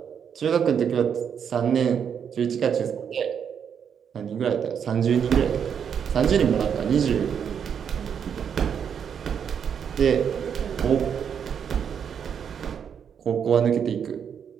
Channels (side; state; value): left; quieter; 7.7 dB